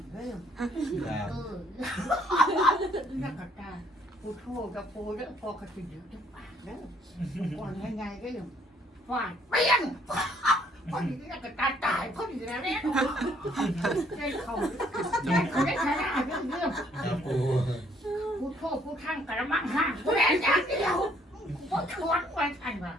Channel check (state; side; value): normal; both; correlation 0.65